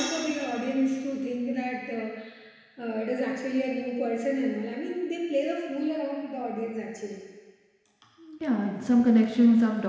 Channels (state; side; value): identical; both; correlation 1.00